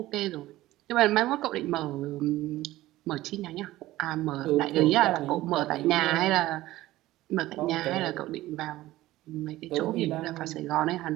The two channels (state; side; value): quieter; left; 16.5 dB